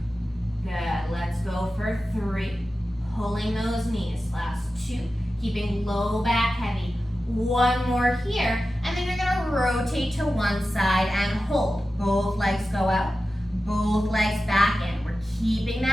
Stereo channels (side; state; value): both; normal; correlation 0.94